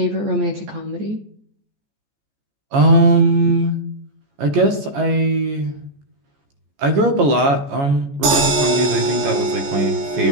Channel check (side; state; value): left; late; 14 ms